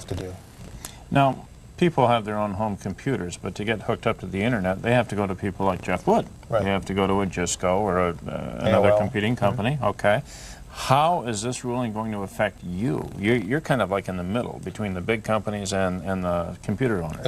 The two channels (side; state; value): both; identical; correlation 1.00